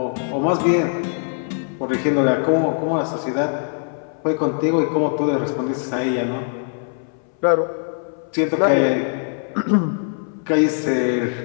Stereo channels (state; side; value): silent; right; 62 dB below the other